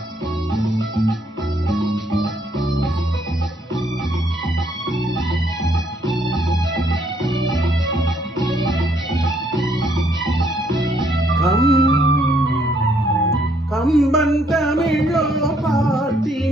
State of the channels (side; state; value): both; normal; correlation 0.69